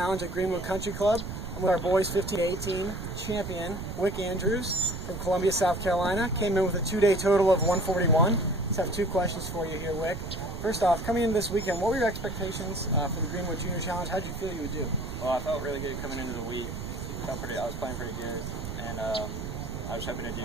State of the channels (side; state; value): right; noise; rumble, 7 dB below the sound